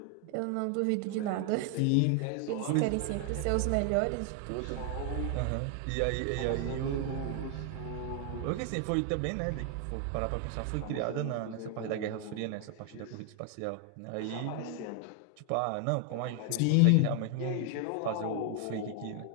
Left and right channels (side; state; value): both; different; correlation 0.00